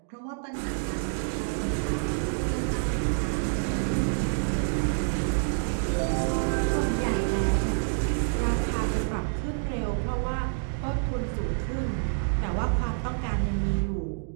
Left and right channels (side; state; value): left; silent; digital silence